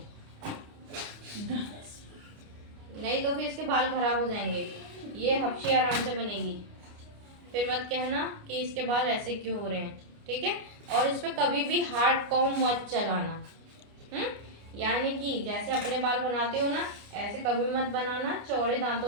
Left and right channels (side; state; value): left; late; 29 ms